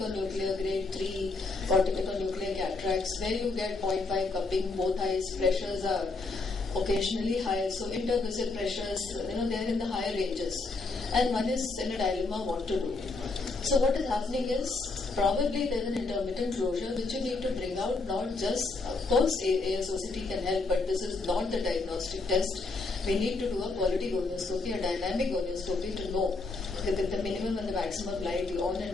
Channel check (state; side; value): quieter; right; 3.6 dB